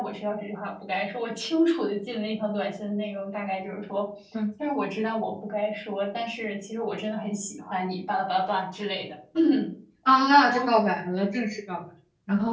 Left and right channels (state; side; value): identical; both; correlation 1.00